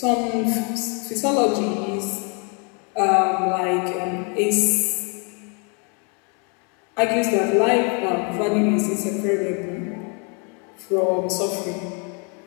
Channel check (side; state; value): right; quieter; 35.6 dB